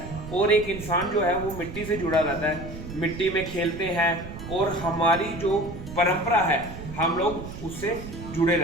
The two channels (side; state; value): right; noise; rumble, 11 dB below the sound